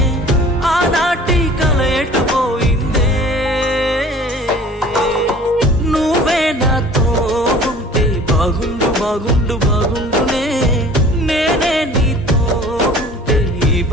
ఆనాటి కల ఎటుపోయిందే. నువ్వే నాతో ఉంటే బాగుండు బాగుండు బాగుండునే. నేనే నీతో ఉంటే ఈ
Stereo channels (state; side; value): normal; both; correlation 0.47